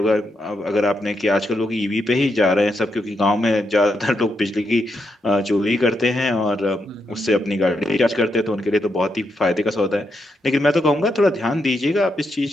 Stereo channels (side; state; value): both; normal; correlation 0.82